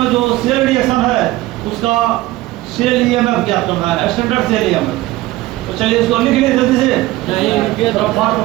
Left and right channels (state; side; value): quieter; left; 17.7 dB